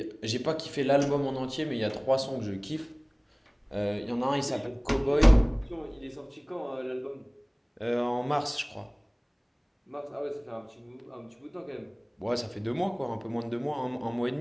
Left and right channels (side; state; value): both; identical; correlation 1.00